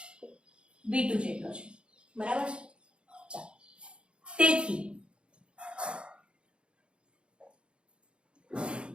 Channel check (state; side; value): late; left; 0.056 ms